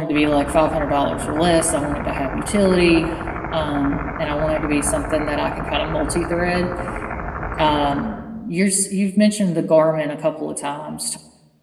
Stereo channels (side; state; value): both; identical; correlation 1.00